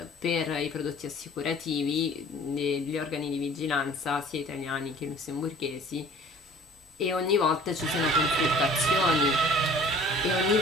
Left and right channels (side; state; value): both; normal; correlation 0.49